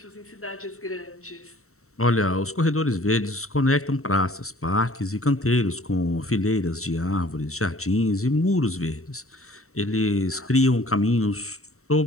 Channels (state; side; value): late; right; 0.64 ms